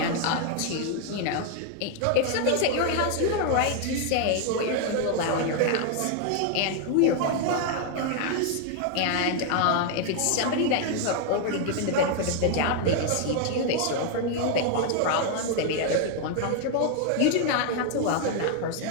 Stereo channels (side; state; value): both; different; correlation 0.00